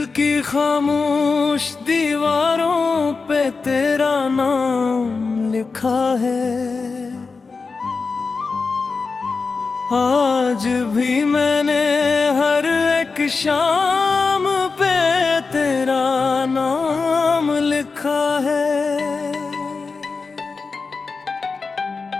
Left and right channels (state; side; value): quieter; right; 4.5 dB